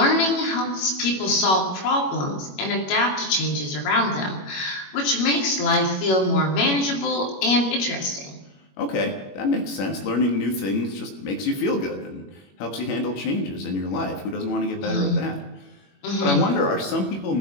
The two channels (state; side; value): late; right; 21 ms